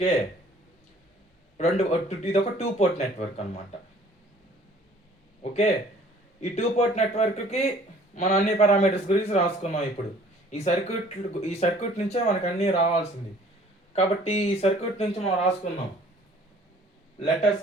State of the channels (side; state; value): both; normal; correlation 0.54